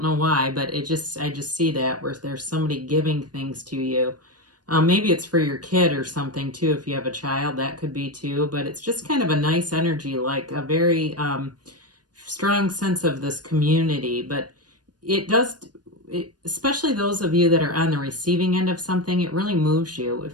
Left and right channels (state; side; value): late; left; 0.69 ms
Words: know why, but I just see that where there's somebody giving things to you. Maybe it's for your kid or something too. If you have a child, that could be too. But it's just kind of a nice energy, like a very strong sense of this community. But especially those of you that are on the receiving end of something, it really moves you. It